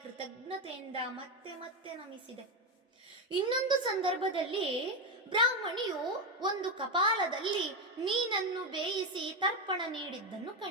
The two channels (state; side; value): normal; both; correlation 0.11